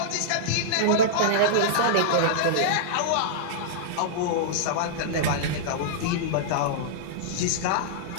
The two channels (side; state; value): both; different; correlation -0.02